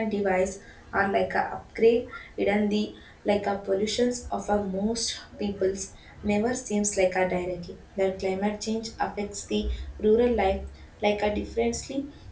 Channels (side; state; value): both; identical; correlation 1.00